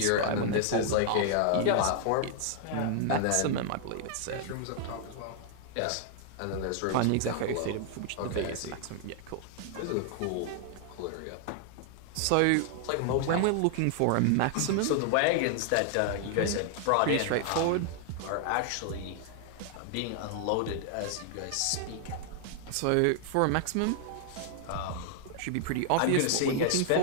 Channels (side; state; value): both; different; correlation 0.00